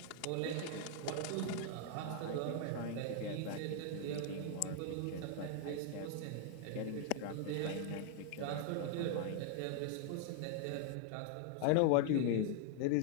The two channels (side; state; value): both; different; correlation 0.00